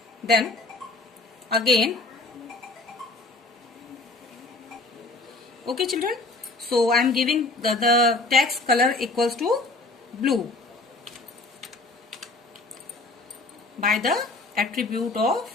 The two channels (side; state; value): right; quieter; 3.2 dB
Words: Then again, okay children, so I am giving the text color equals to blue by the attribute of